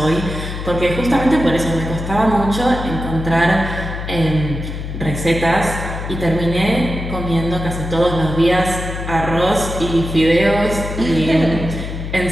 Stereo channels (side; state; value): left; noise; hum, 6 dB below the sound